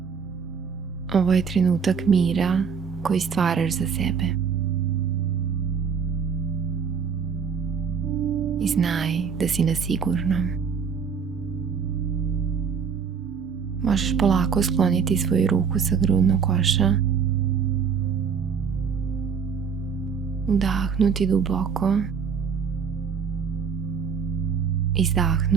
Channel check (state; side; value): quieter; left; 6.3 dB